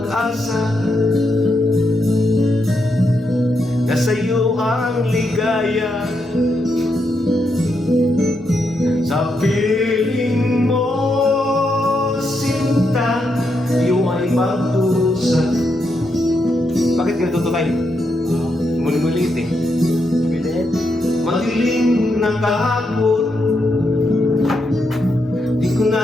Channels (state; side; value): normal; both; correlation 0.82